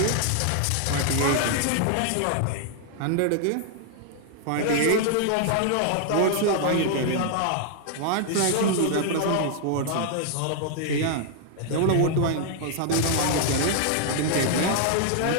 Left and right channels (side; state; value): both; different; correlation 0.00